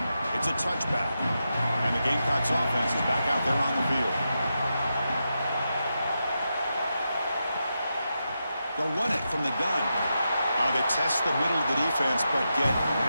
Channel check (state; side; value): inverted; both; correlation -0.87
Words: it's a touchback. And the Gamecocks offense is back out there on the field. They'll run it from the gun. They test the middle of the defense, but get